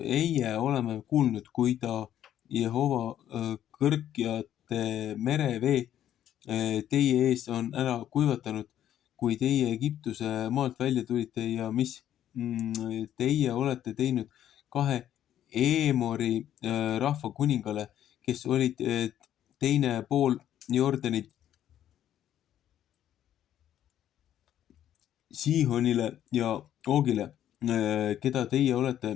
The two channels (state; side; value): quieter; right; 11.2 dB